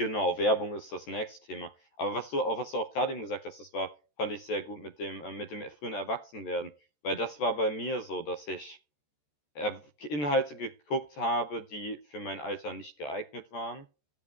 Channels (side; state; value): right; late; 14 ms